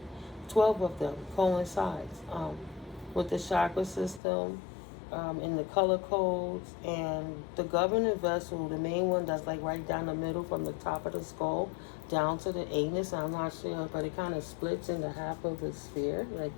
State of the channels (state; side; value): drops out; right; at 4.2 s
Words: 12 of them coincides with the chakra system, in the color codes, and the governing vessel, the main one that's like right down the middle from the top of the skull down to the anus. I'm not sure, but it kind of splits into half of the sphere, like